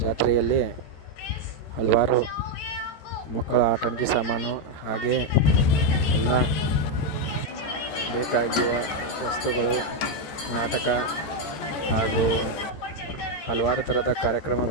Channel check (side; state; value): right; late; 14 ms